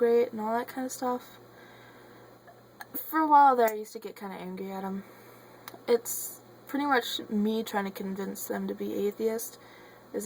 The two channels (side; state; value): both; identical; correlation 1.00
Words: and all that kind of stuff. For a while there, I used to get kind of angry at them. It's pretty much me trying to convince them to be atheist is